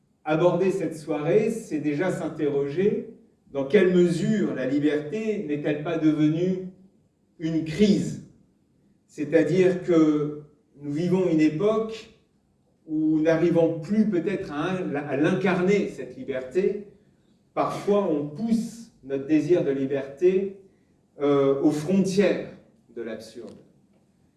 aborder cette soirée, c'est déjà s'interroger dans quelle mesure la liberté n'est-elle pas devenue une crise. C'est-à-dire que nous vivons une époque où, n'arrivant plus peut-être à l'incarner, cette liberté, parfois on pousse notre désir de liberté aux frontières de l'absurde.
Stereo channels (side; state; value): both; identical; correlation 1.00